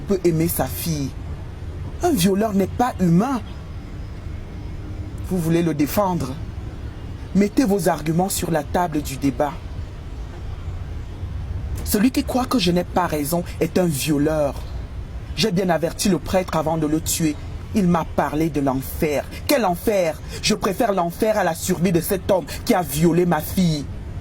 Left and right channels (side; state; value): both; identical; correlation 1.00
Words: peut aimer sa fille? Un violeur n'est pas humain. Vous voulez le défendre? Mettez vos arguments sur la table du débat. Celui qui croit que je n'ai pas raison est un violeur. J'ai bien averti le prêtre avant de le tuer. Il m'a parlé de l'enfer. Quel enfer? Je préfère l'enfer à la survie de cet homme qui a violé ma fille.